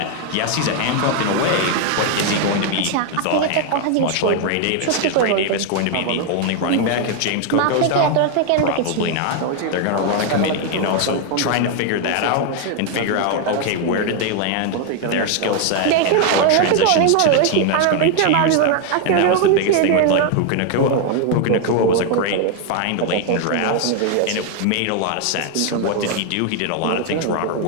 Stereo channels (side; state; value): both; different; correlation 0.00